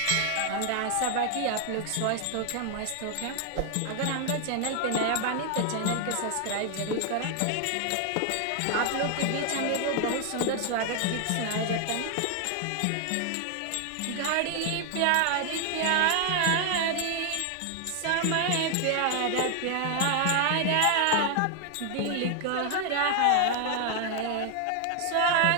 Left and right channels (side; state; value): both; different; correlation 0.00